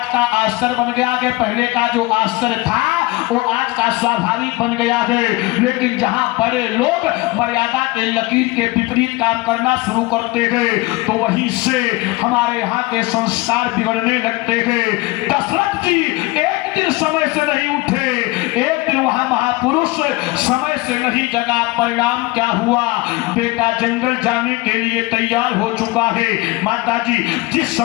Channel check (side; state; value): right; quieter; 21.6 dB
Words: का आश्चर्य बन गया है, पहले का जो आश्चर्य था वो आज का स्वाभाविक बन गया है। लेकिन जहां बड़े लोग मर्यादा के लकीर के विपरीत काम करना शुरू करते हैं तो वहीं से हमारे यहाँ के संस्कार बिगड़ने लगते हैं। दशरथ जी एक दिन समय से नहीं उठे, एक दिन वहां महापुरुष समय से नहीं जगा, परिणाम क्या हुआ, बेटा जंगल जाने के लिए तैयार हो चुका है। माता जी जिस